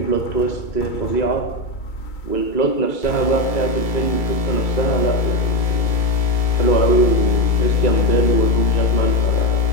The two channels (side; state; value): right; late; 2.3 ms